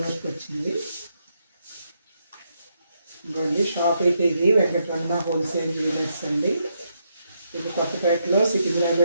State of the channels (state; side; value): inverted; both; correlation -0.79